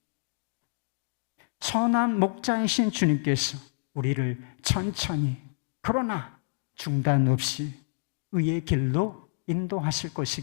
선한 목자이신 주님께서 우리를 천천히 그러나 중단 없이 의의 길로 인도하실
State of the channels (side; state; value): right; silent; digital silence